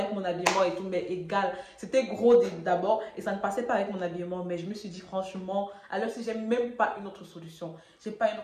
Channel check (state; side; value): identical; both; correlation 1.00